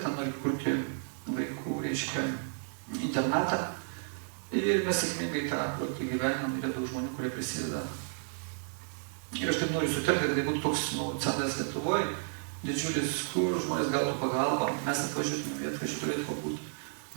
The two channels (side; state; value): left; silent; digital silence